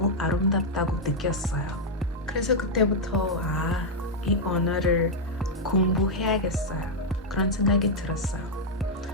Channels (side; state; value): both; normal; correlation -0.02